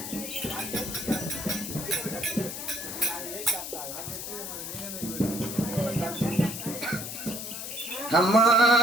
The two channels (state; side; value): noise; left; hiss, 7 dB below the sound